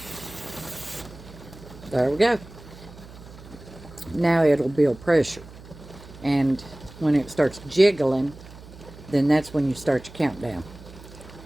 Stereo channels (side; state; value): right; noise; hum, 18 dB below the sound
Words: There we go. Now it'll build pressure, and when it starts jiggling, then that's when you start your countdown.